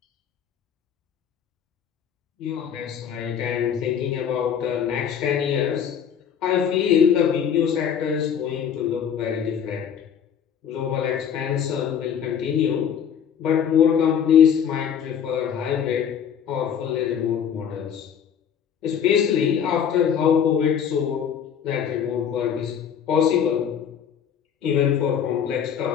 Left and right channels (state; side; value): quieter; right; 8.2 dB